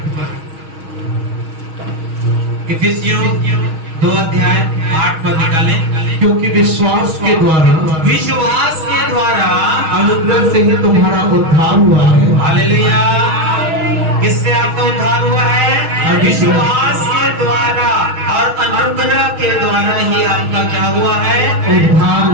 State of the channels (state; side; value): late; left; 6.3 ms